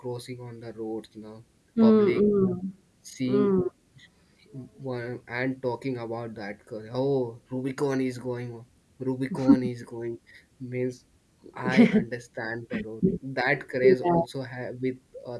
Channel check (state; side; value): identical; both; correlation 1.00